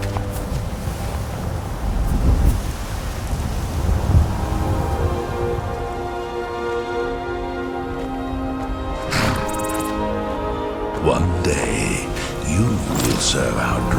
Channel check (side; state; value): both; identical; correlation 1.00